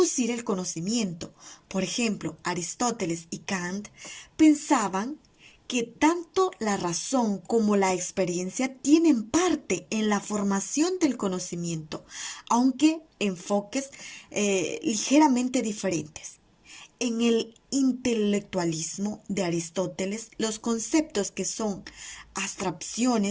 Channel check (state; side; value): identical; both; correlation 1.00